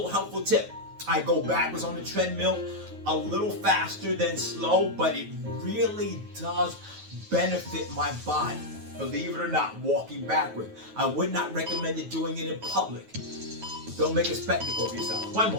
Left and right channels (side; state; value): left; late; 9.3 ms